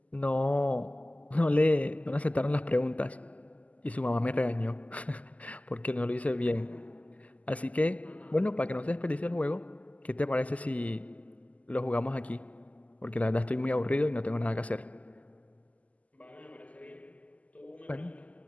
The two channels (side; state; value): right; late; 0.072 ms